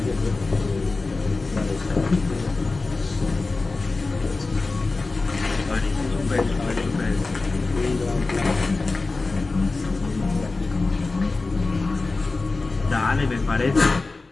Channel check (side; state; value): right; quieter; 3.6 dB